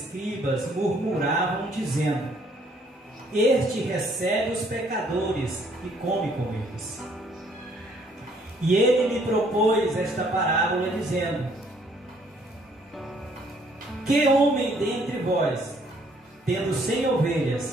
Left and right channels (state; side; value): normal; both; correlation 0.64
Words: murmuravam, dizendo: Este recebe os pecadores e come com eles. E ele lhe propôs esta parábola, dizendo: Que homem dentre vós, tendo 100